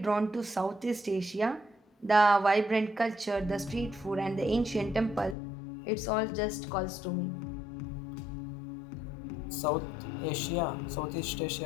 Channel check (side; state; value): right; drops out; at 5.4 s